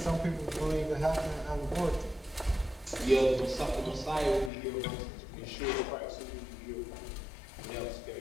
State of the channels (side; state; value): right; drops out; at 4.5 s